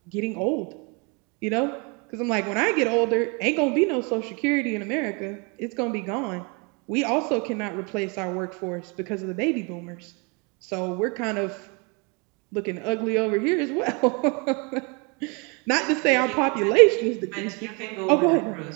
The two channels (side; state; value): left; quieter; 31.6 dB